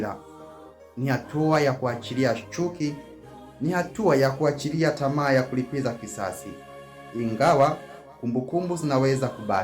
Ni hatua ya kuachilia chuki. Ni hatua ya kuachilia tamaa ya kulipiza kisasi, ingawa kumbukumbu zinaweza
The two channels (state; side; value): identical; both; correlation 1.00